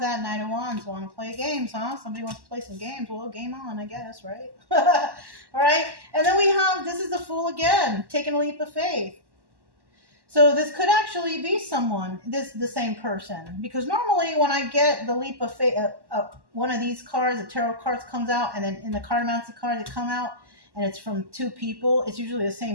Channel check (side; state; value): left; late; 1.1 ms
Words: Knight of Wands. Want to play games, huh? Somebody wants to play some games. Well, game on, I guess, right? All right. And then we have, this is the Fool again, taking a leap of faith. So this could actually be someone, the same person, because normally when I get the leap of faith, one of these cards, the tarot cards comes out, and then in the Cartomancy cards that come out, and it's from two people, it's usually the